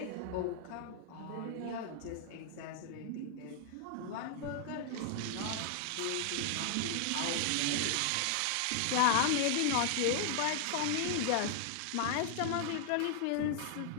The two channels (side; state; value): both; different; correlation 0.00